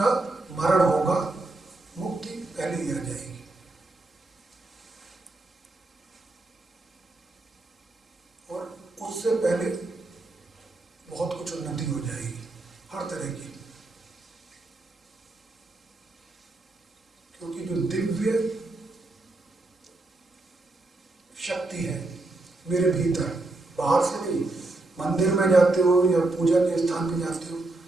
मरण होगा, मुक्ति पहले ही आ जाएगी। उससे पहले बहुत कुछ उन्नति हो जाएगी, हर तरह की। क्योंकि जो दिव्य शक्ति है मेरे भीतर, बाहर से नहीं, मंदिर में जाते हो या पूजा के स्थान पे जाते हो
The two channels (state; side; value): quieter; left; 3.0 dB